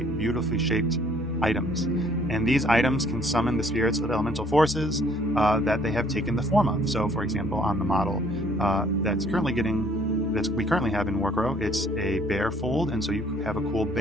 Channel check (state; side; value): normal; both; correlation 0.60